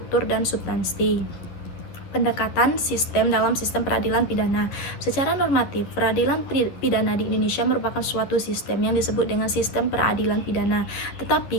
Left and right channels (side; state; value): right; late; 11 ms